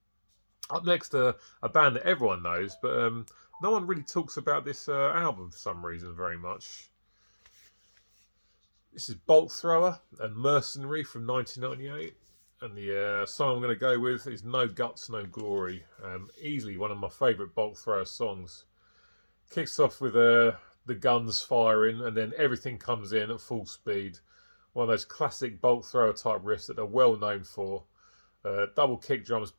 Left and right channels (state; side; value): inverted; both; correlation -1.00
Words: Up next, a band that everyone knows, but no one really talks about this album for some reason very much. This is Bolt Thrower and Mercenary from 1998. And the song I'm going to go with is No Guts, No Glory. Easily one of my favourite Bolt Thrower songs. Kicks off with the guns firing, and then everything comes in at full speed. One of those classic Bolt Thrower type riffs that they're well known for. Double kick drums